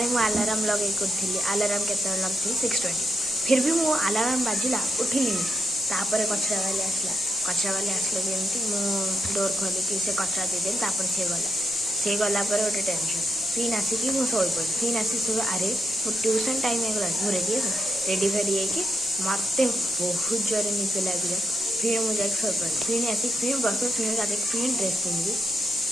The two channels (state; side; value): normal; both; correlation 0.81